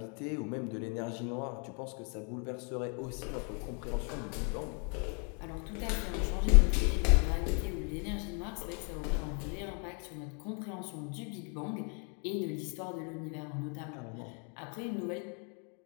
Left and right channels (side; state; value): right; quieter; 38.9 dB